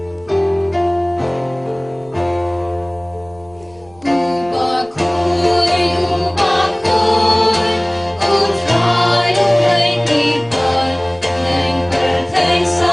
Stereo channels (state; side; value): noise; right; rumble, 29 dB below the sound